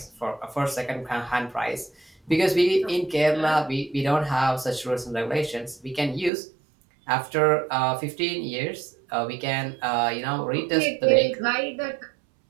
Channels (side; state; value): left; drops out; at 6.3 s